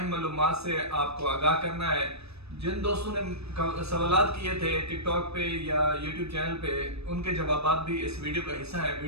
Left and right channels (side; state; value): left; late; 0.79 ms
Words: मालूमात से आपको आगाह करना है। जिन दोस्तों ने सवालात किए थे टिकटॉक पे या यूट्यूब चैनल पे, उनके जवाबात भी इस वीडियो का हिस्सा है।